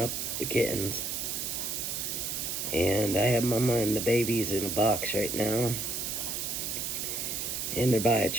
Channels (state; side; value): noise; right; hiss, 2 dB below the sound